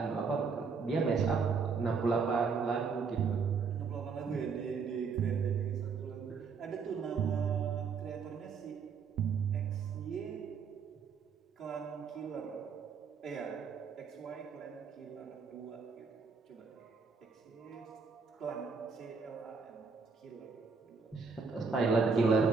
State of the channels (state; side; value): quieter; left; 5.3 dB